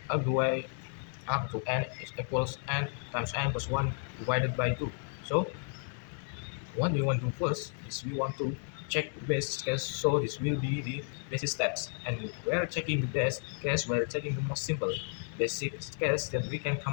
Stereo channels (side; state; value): right; silent; 56 dB below the other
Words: the way up to n is equals n times n plus 1 divided by 2. So what we want to do first is we want to check the base case. So this will be the basic steps. And we're checking the best case, we're checking the most simple basic case that we can